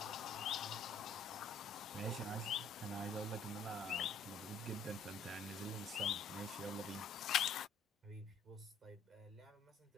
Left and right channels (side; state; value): right; quieter; 4.0 dB